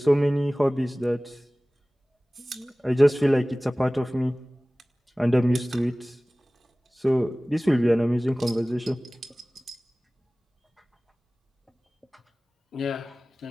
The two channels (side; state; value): both; normal; correlation 0.98